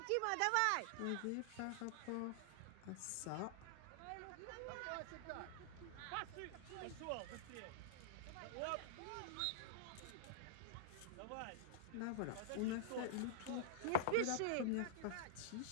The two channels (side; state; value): both; different; correlation -0.01